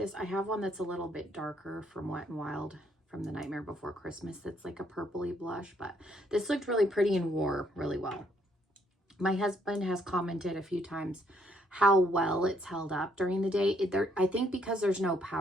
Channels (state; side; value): normal; both; correlation 0.70